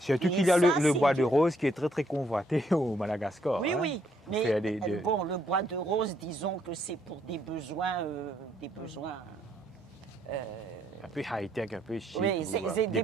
qu'il y a le bois de rose qui est très très convoité au Madagascar. Oui. Mais le bois de rose, disons que c'est pour des besoins un peu high-tech, un peu chic. Oui, c'est des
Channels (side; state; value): both; normal; correlation 0.70